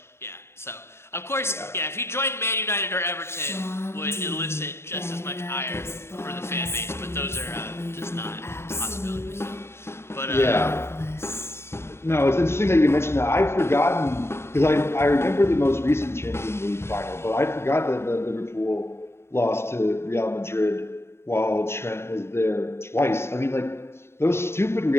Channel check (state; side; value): late; right; 0.12 ms